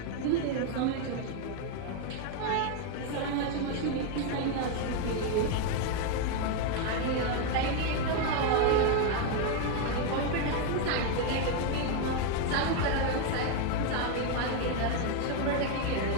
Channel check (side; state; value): both; different; correlation 0.01